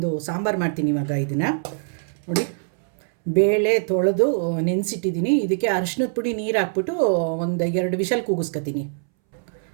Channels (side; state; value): left; silent; 63 dB below the other